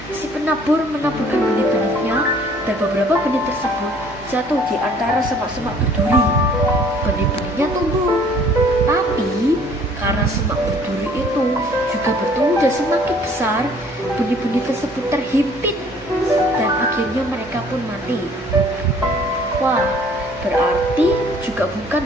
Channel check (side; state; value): both; normal; correlation 0.56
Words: Si penabur menaburkan benih-benihnya dan beberapa benih tersebut jatuh di antara semak-semak berduri. Benih-benihnya tumbuh, tapi karena semak berduri itu juga bertumbuh dan semakin besar, benih-benih tersebut terhimpit dan akhirnya mereka pun mati. Wah, berarti juga bukan